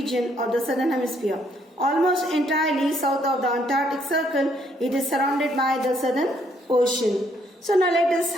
of the southern hemisphere. Almost entirely south of the Antarctic Circle, it is surrounded by the Southern Ocean. So now let us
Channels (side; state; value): both; normal; correlation 0.69